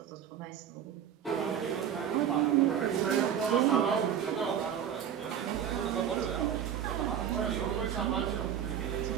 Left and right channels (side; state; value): left; quieter; 9.1 dB